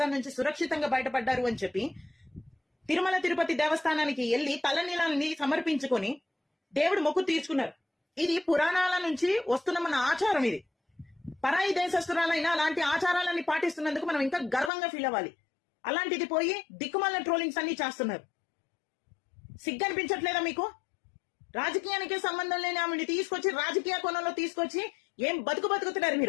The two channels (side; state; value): right; drops out; at 14.7 s